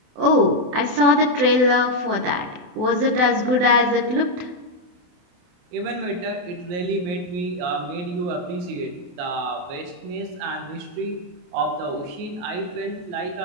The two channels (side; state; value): left; late; 28 ms